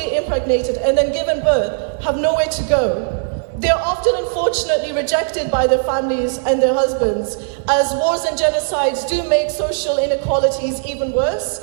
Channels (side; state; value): left; silent; 65 dB below the other